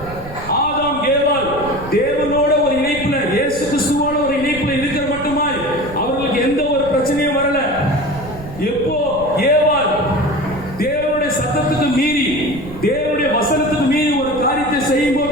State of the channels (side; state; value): right; noise; rumble, 14 dB below the sound